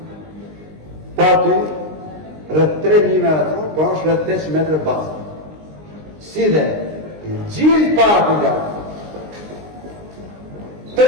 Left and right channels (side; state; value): left; late; 19 ms